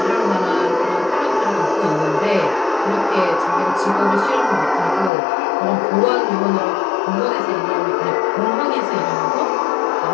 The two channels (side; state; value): right; drops out; at 5.1 s